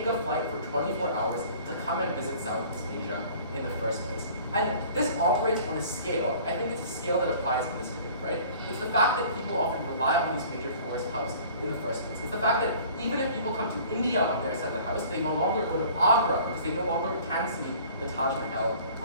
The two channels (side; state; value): both; inverted; correlation -0.49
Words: a flight for 24 hours to come and visit Southeast Asia in the first place. And this operates on a scale, I think it's a scale that applies in this debate, right? It's the fact that people often rely on these major tourist hubs in the first place. It's the fact that even if people come to India on their side of the house, they no longer go to Agra because they no longer can see the Taj Mahal